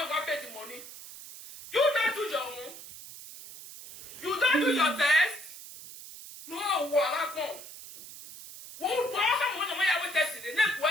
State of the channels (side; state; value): right; noise; hiss, 14 dB below the sound